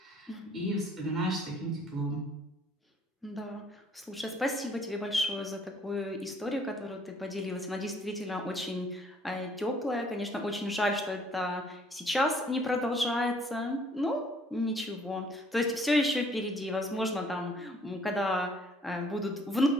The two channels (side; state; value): both; normal; correlation 0.61